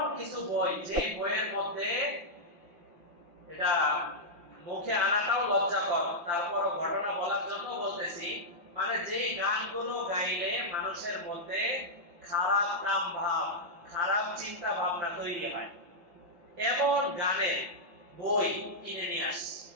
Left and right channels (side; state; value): left; late; 5.9 ms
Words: কিছু বই যে বইয়ের মধ্যে, এটা মুখে আনাটাও লজ্জাকর, তারপরও ঘটনা বলার জন্য বলতেছি, মানে যে গানগুলো গাইলে মানুষের মধ্যে খারাপ কাম ভাব, খারাপ চিন্তা ভাবনা তৈরি হয়, এমন গানের বই কিনে নিয়ে আসছে।